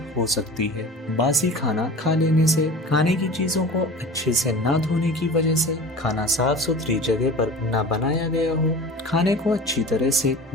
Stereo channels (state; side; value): normal; both; correlation 0.37